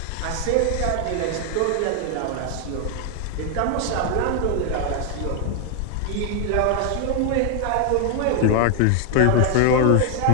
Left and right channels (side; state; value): both; different; correlation 0.00